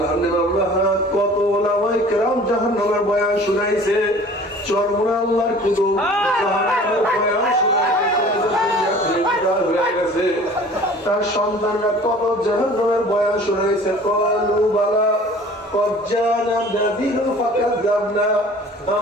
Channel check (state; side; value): normal; both; correlation 0.47